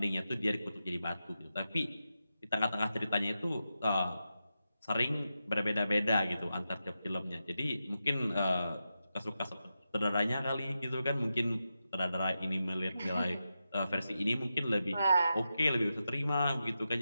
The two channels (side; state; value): both; inverted; correlation -0.89